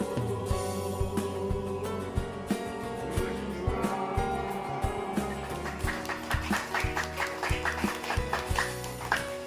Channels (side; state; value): both; identical; correlation 1.00